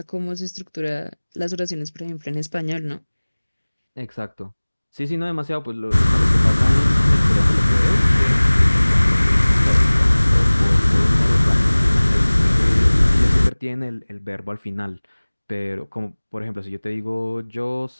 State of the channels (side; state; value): both; inverted; correlation -1.00